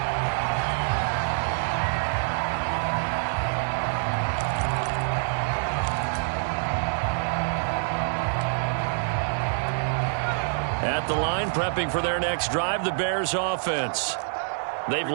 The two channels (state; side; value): silent; left; digital silence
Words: At the line, prepping for their next drive, the Bears offense. They've